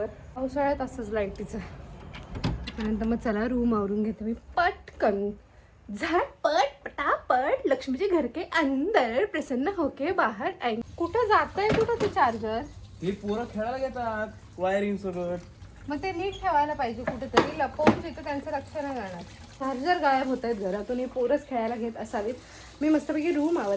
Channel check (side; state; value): both; identical; correlation 1.00